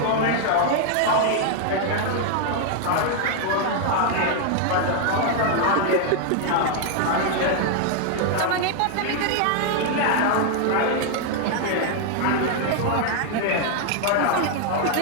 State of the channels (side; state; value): both; different; correlation 0.00